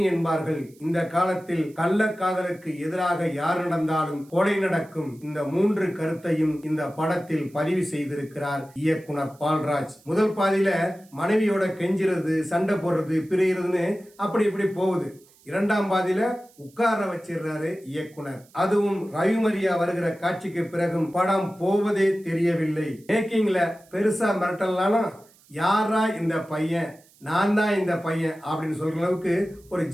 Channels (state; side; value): noise; right; hiss, 29 dB below the sound